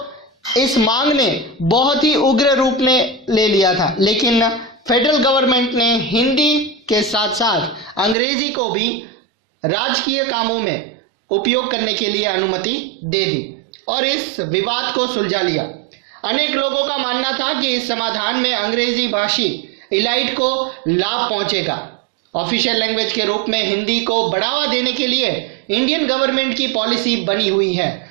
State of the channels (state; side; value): drops out; left; at 8.2 s